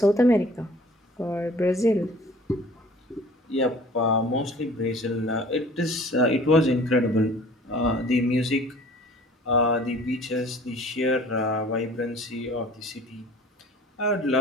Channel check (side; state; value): both; normal; correlation 0.48